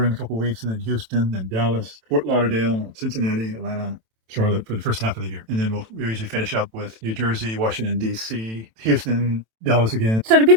in a couple of weeks, and then Houston, then Dallas, Fort Lauderdale, Cincinnati, Atlanta, Charlotte for the first half of the year. And then we usually finish up with New Jersey, Washington, D.C., Houston, Dallas again. So do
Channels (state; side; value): late; left; 27 ms